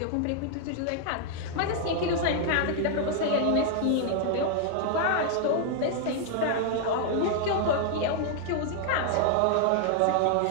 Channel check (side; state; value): both; different; correlation 0.00